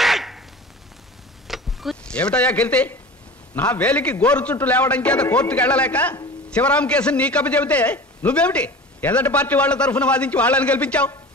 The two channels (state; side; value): normal; both; correlation 0.37